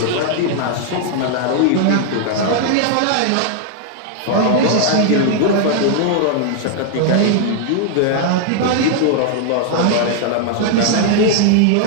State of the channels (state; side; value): different; both; correlation 0.00